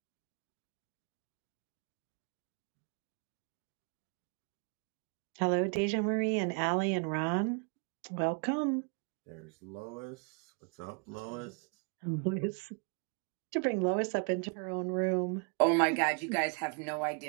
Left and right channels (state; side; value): quieter; left; 35.5 dB